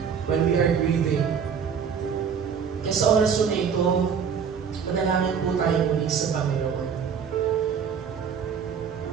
when we are grieving. Kaya sa oras na ito, manalangin po tayo muli sa Panginoon.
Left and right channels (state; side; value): quieter; left; 6.9 dB